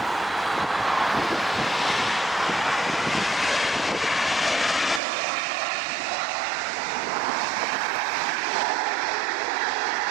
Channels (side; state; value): left; drops out; at 5.0 s